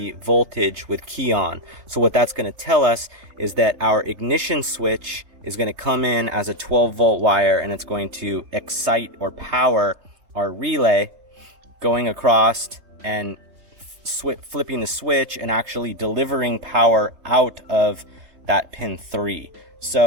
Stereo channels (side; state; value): left; late; 3.2 ms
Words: voltage with key on. So what that's going to tell us is that our ignition switch is going to come in as a 12-volt wire, and it's going to excite or power our relay, going across and flipping the switch and actually delivering power out of that pin 3.